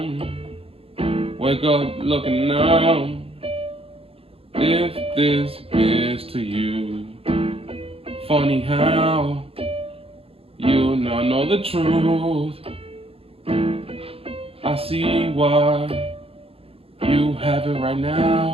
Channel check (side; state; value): left; late; 0.28 ms